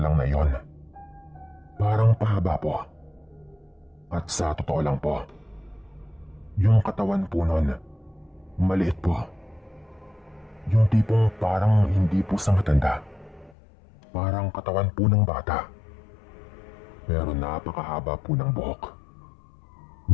na yon, parang pahaba po. At sa totoo lang po, yung katawan po noon, maliit po. Yung tipong parang hindi po sa matanda. Parang katawan po ng bata. Pero napakahaba po ng buhok.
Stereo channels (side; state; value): right; drops out; at 13.6 s